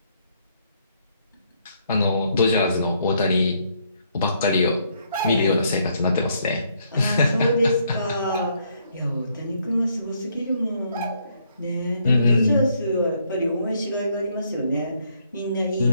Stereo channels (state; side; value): inverted; both; correlation -0.72